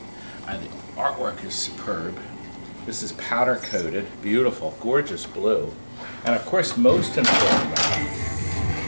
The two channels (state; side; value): inverted; both; correlation -1.00